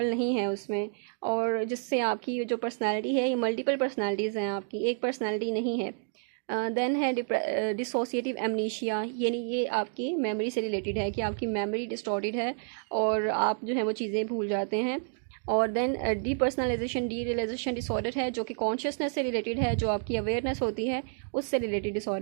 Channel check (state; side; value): silent; left; digital silence